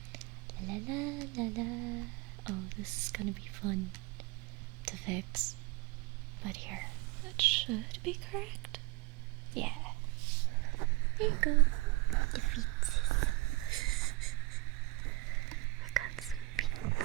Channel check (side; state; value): left; quieter; 21.4 dB